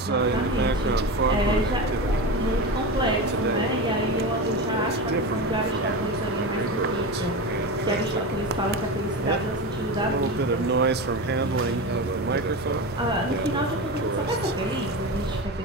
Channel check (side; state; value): both; normal; correlation 0.23